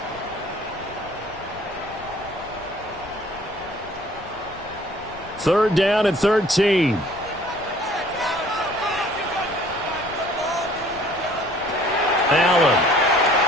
Third down and 13. Allen.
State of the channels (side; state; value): left; noise; rumble, 19 dB below the sound